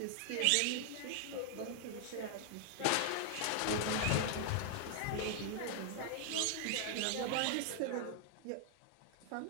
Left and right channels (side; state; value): both; different; correlation 0.00